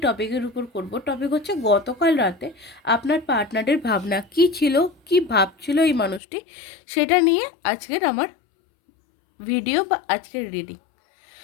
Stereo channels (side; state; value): right; drops out; at 6.2 s